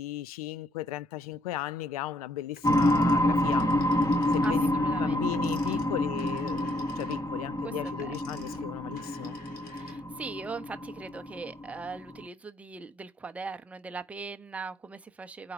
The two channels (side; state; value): both; normal; correlation 0.69